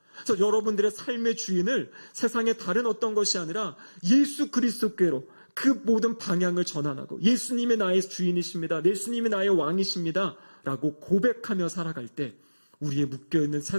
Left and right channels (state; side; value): inverted; both; correlation -1.00